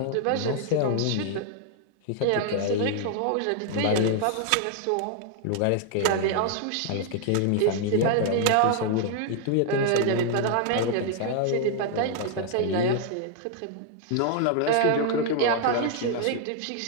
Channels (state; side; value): different; both; correlation 0.00